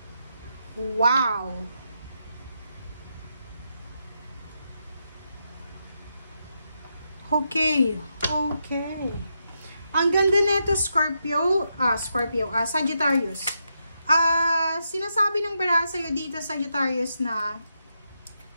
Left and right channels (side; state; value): both; inverted; correlation -0.83